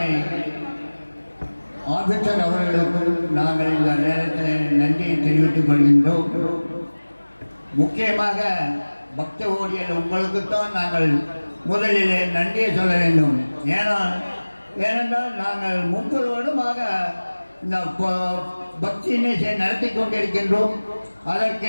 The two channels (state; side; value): inverted; both; correlation -1.00